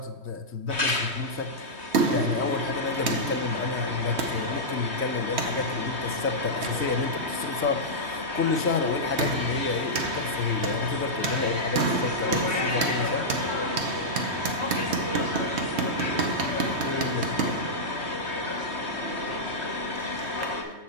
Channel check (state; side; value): late; left; 3.2 ms